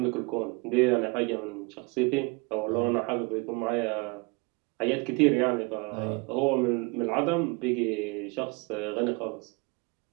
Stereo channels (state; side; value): quieter; left; 28.9 dB